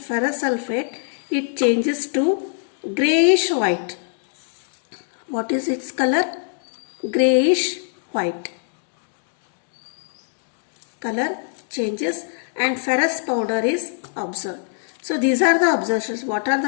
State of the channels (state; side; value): silent; right; 60 dB below the other